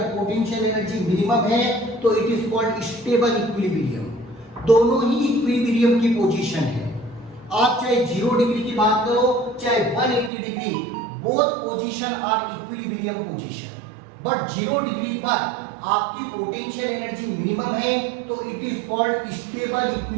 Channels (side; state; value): left; drops out; at 10.3 s